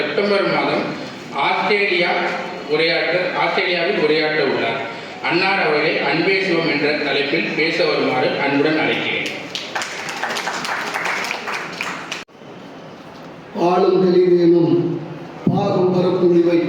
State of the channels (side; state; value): both; identical; correlation 1.00